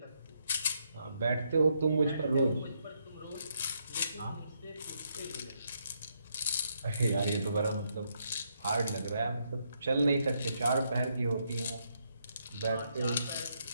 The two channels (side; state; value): both; inverted; correlation -0.77